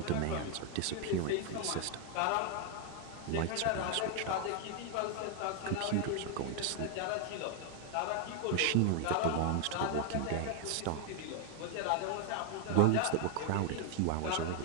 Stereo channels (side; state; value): both; different; correlation 0.00